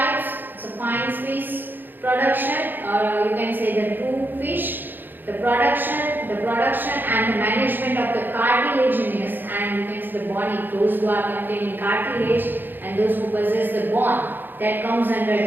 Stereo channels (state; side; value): late; left; 0.093 ms